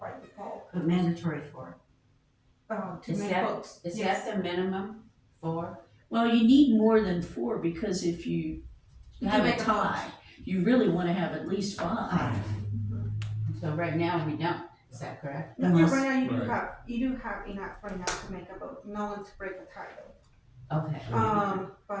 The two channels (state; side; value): identical; both; correlation 1.00